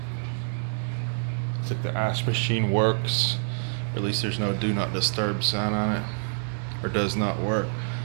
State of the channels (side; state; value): left; silent; 60 dB below the other